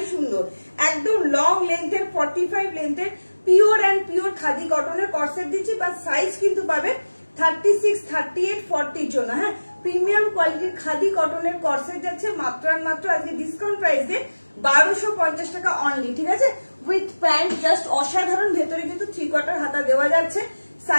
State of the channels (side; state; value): both; inverted; correlation -1.00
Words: সুন্দর। একদম লং লেন্থের 45 লেন্থের পিওর অ্যান্ড পিওর খাদি কটনের কর্সেট দিচ্ছি। বা সাইজ কিন্তু পাবে 36, 38, 40 জন্য। হ্যাঁ, প্রিমিয়াম কোয়ালিটির খাদি কটনের কর্সেট যাচ্ছে মাত্র আর মাত্র আজকে ডিসকাউন্ট প্রাইসে 1250 টাকা অনলি, ঠিক আছে, উইথ প্যান্ট, জাস্ট অসাধারণ। ভেতরে কিন্তু 3/4 হাতা দেওয়া যাচ্ছে,